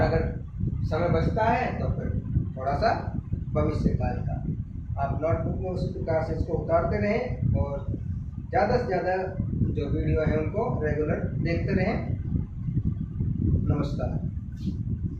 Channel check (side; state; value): both; identical; correlation 1.00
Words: अगर समय बचता है तो फिर थोड़ा सा भविष्य काल का। आप नोटबुक में उसी प्रकार से इसको उतारते रहें, और ज़्यादा से ज़्यादा जो वीडियो है उनको रेगुलर देखते रहें। नमस्कार।